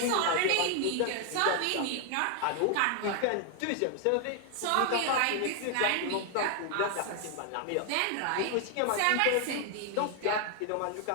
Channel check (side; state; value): both; different; correlation 0.00